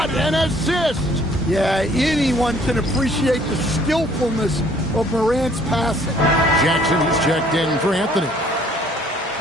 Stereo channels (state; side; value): normal; both; correlation 0.59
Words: an assist! Yeah, anyone can appreciate the skillfulness of Morant's passing. Jackson is checked in for Anthony.